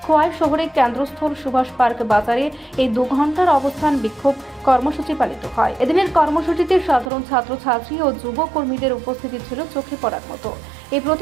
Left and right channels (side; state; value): left; drops out; at 7.1 s